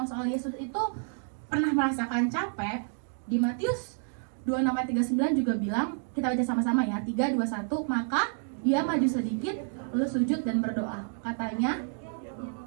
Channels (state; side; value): silent; left; 58 dB below the other